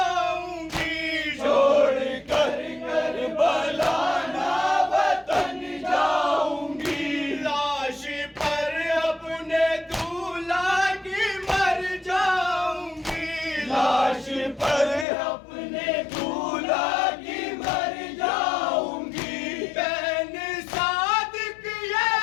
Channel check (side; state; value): right; drops out; at 15.1 s